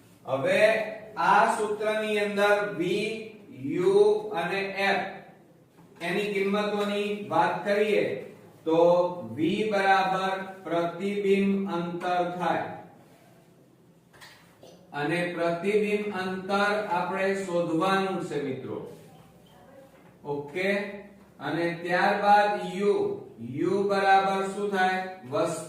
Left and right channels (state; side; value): identical; both; correlation 1.00